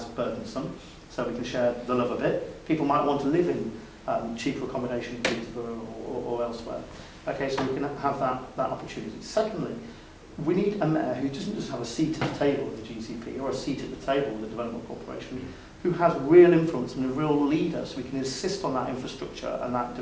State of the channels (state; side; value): identical; both; correlation 1.00